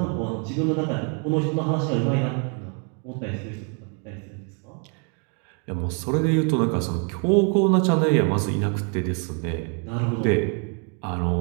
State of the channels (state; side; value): quieter; left; 39.3 dB